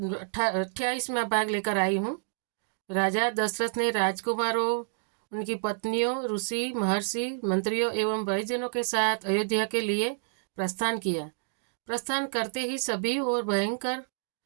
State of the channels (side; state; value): left; silent; digital silence